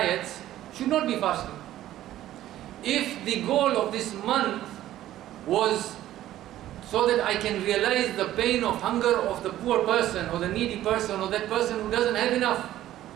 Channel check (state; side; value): quieter; left; 13.5 dB